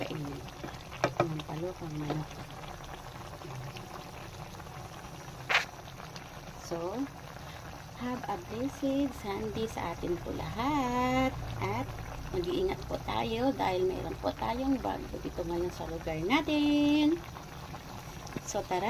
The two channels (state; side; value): identical; both; correlation 1.00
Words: Sinampalokang manok. So, have a blessed Sunday sa atin po lahat. At mag-iingat po tayo dahil mayroon po tayong bagyo dito ngayon sa lugar natin. So,